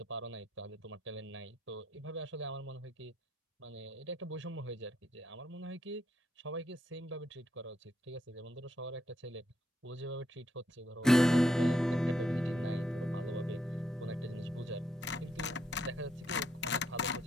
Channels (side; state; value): both; normal; correlation 0.77